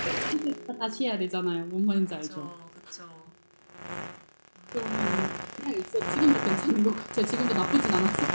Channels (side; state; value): both; inverted; correlation -1.00